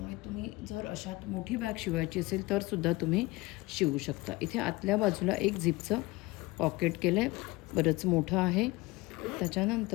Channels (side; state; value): right; quieter; 21.7 dB